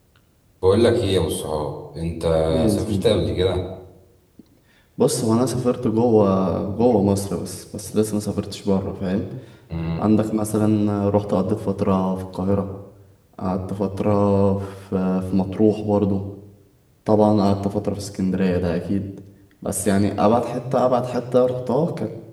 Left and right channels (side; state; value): both; identical; correlation 1.00